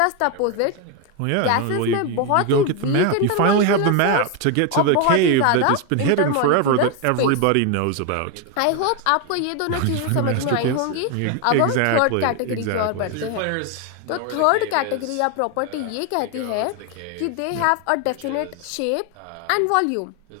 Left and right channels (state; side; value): different; both; correlation 0.01